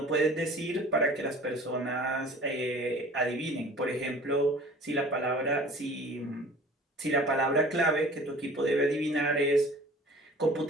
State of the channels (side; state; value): both; normal; correlation 0.46